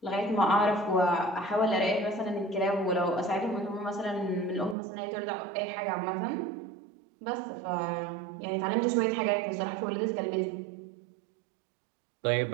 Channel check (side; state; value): left; drops out; at 4.8 s